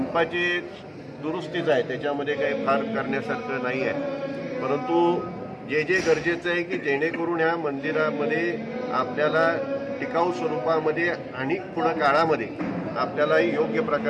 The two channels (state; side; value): identical; both; correlation 1.00